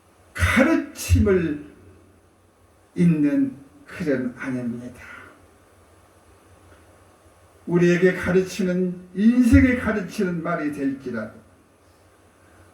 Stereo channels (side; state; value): both; identical; correlation 1.00